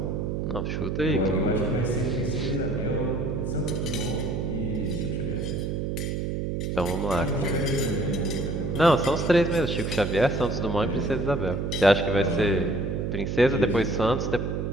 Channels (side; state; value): right; noise; hum, 2 dB below the sound